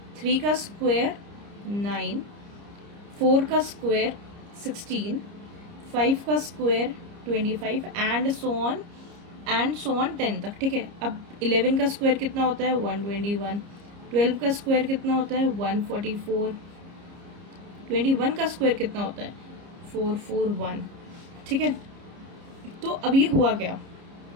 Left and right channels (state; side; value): late; left; 30 ms